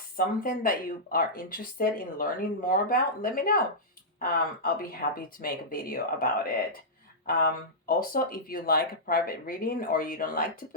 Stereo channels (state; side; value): normal; both; correlation -0.12